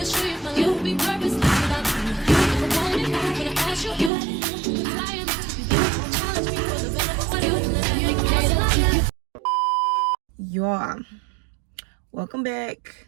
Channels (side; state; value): left; drops out; at 4.1 s